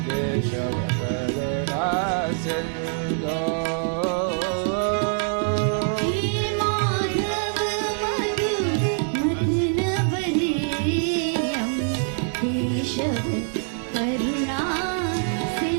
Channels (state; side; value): silent; left; 62 dB below the other